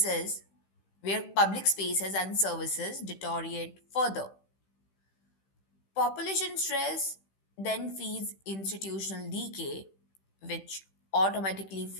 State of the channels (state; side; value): late; right; 15 ms